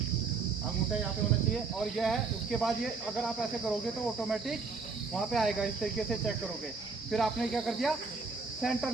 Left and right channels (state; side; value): quieter; left; 4.6 dB